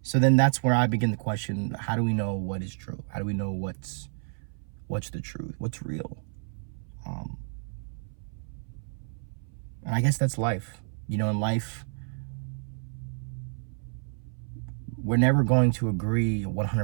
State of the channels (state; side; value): silent; left; 58 dB below the other